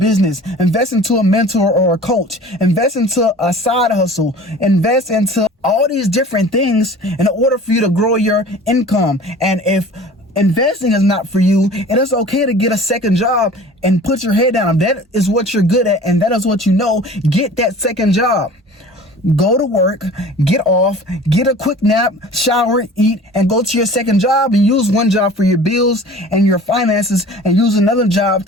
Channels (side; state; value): both; normal; correlation 0.44